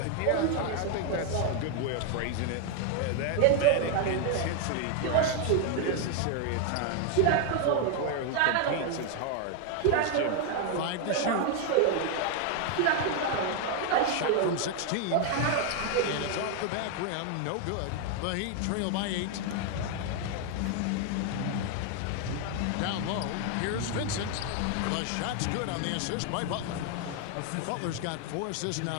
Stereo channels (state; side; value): different; both; correlation 0.01